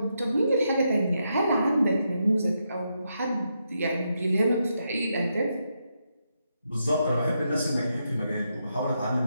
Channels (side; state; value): both; inverted; correlation -0.82